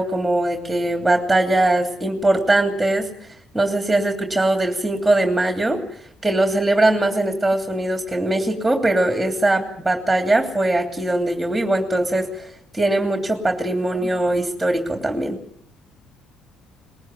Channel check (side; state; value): both; normal; correlation 0.92